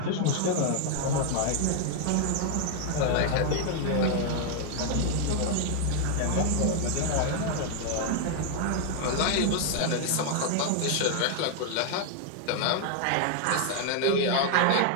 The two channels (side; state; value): both; different; correlation 0.00